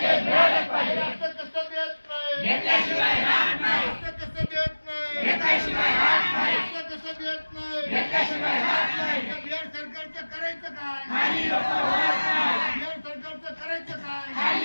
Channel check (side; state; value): both; inverted; correlation -1.00